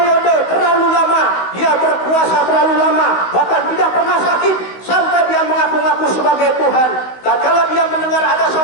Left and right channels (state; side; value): late; right; 16 ms